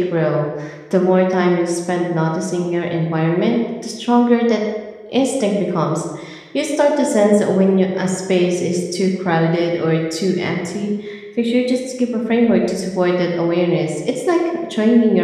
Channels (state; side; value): identical; both; correlation 1.00